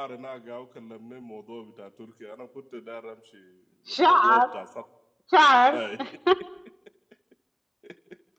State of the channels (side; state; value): both; identical; correlation 1.00